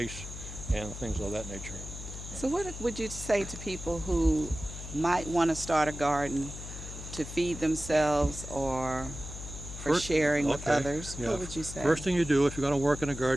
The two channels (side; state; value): left; noise; hum, 10 dB below the sound